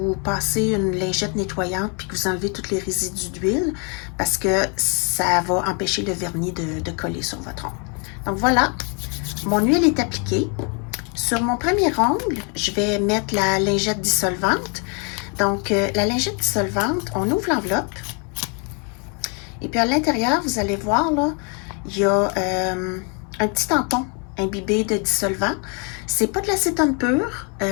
passez une lingette nettoyante puis que vous enlevez tous les résidus d'huile parce que ça va empêcher le vernis de coller sur votre ongle. Donc voilà, mon huile est appliquée. Sur mon premier ongle, je vais mettre la lingette dissolvante. Donc, la lingette dissolvante, on ouvre l'enveloppe. Et puis à l'intérieur, vous allez voir, là, il y a un petit tampon imbibé de dissolvant. C'est pas de l'acétone pur,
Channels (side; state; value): right; quieter; 36.9 dB